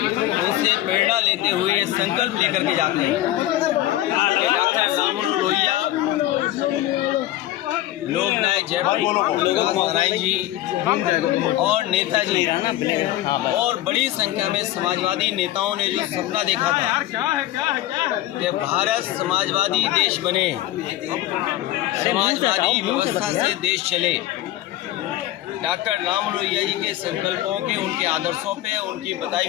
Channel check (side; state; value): right; quieter; 14.8 dB